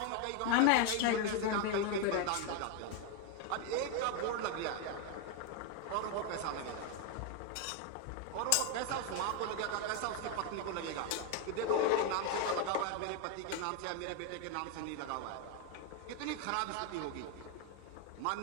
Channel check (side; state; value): both; different; correlation 0.01